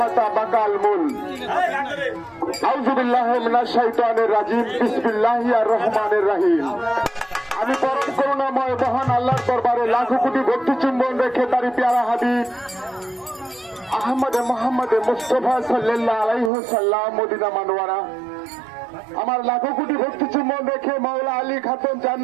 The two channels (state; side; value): drops out; left; at 16.5 s